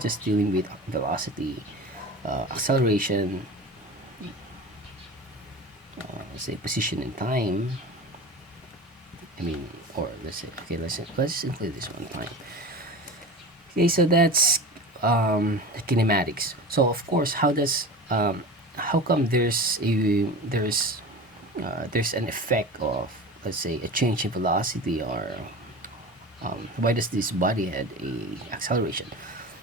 dealing with velocity, acceleration, let's say position and time. I mean, or let's say, okay, let's include this one, time. Okay, so that's kinematics. So of course, how come there's an effect of, let's say, a change in velocity, or why does this body had a acceleration?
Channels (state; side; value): normal; both; correlation 0.32